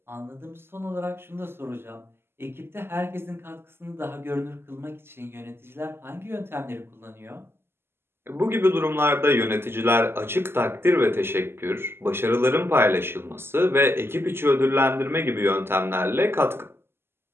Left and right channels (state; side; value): late; left; 0.12 ms